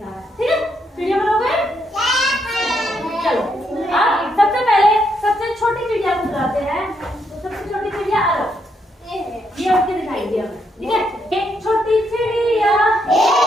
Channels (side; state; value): both; normal; correlation 0.77